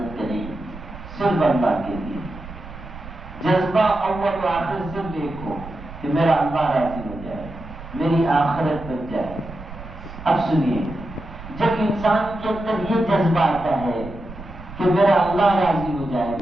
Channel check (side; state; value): right; noise; rumble, 14 dB below the sound